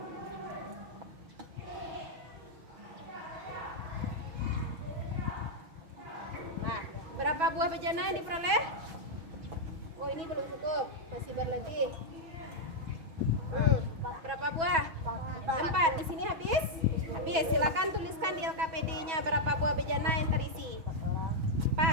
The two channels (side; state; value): left; late; 6.2 ms